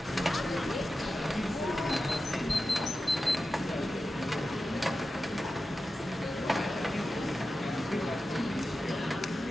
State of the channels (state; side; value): normal; both; correlation 0.92